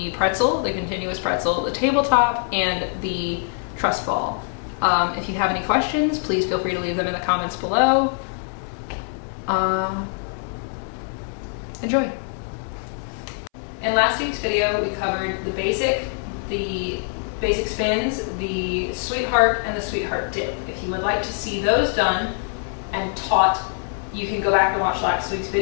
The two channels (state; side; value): silent; right; 61 dB below the other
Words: pretzel, the continuous pretzel, the tabletop, and the truss ball. If you have any questions, please feel free to leave them in the comments below. Enjoy. In last week's video, we covered the basic spins, the sweetheart, and the sweetheart dip. If you would like to see those done and taught, you can go back and watch last week's